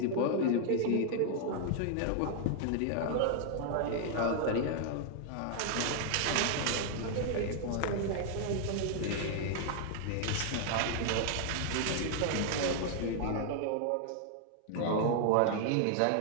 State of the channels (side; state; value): both; different; correlation 0.00